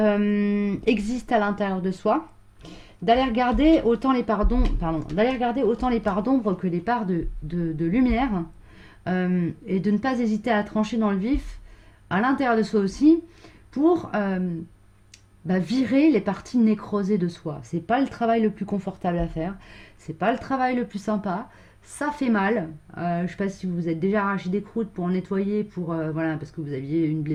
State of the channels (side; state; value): both; identical; correlation 1.00